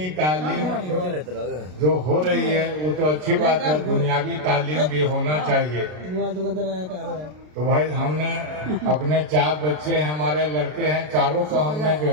तालीम जो हो रही है वो तो अच्छी बात है, दुनियावी तालीम भी होना चाहिए। तो भाई हमने अपने 4 बच्चे हैं, हमारे लड़के हैं, चारों को हमने जो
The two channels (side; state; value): left; late; 33 ms